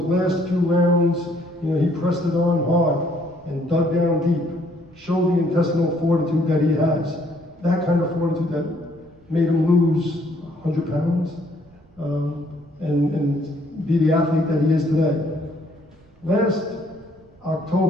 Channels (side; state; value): right; noise; rumble, 29 dB below the sound